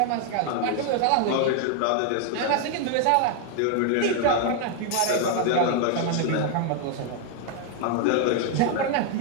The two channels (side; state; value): both; different; correlation 0.00